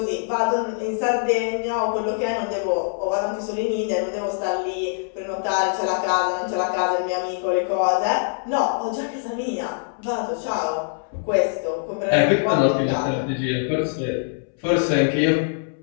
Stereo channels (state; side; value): silent; right; 63 dB below the other